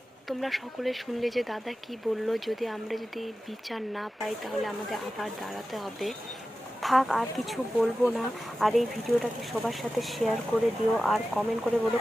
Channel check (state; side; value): normal; both; correlation 0.94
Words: তোমরা সকলে শুনলে যে দাদা কি বললো, আমরা যদি বিচার না পাই তাহলে আমাদের আবার দাঁড়াতে হবে। থাক, আর কিছু বলবো না। আর এই ভিডিওটাকে সবার সাথে শেয়ার করে দিও, আর কমেন্ট করে বলো